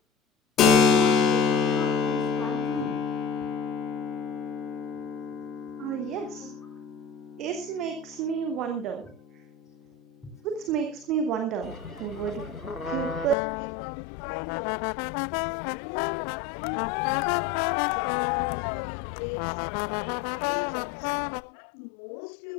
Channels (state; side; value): drops out; right; at 13.4 s